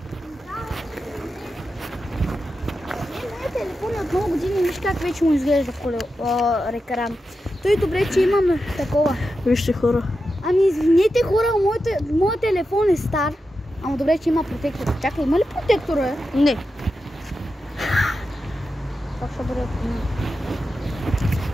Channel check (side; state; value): both; normal; correlation 0.90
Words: Телефон от много години, виж как вече му изглежда екран. Той добре, че имаме такова. Вижте хора. Ами извинете хора, моят телефон е стар. Ама добре, че има протектор. Чакай, има ли протектор, бе? Не. Как ще бъде?